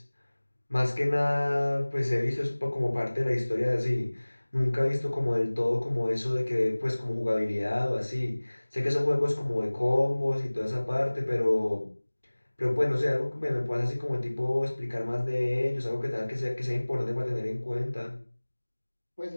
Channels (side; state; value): both; inverted; correlation -1.00